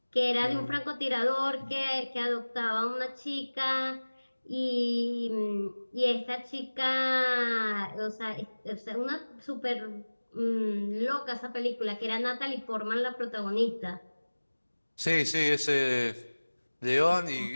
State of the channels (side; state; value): both; inverted; correlation -1.00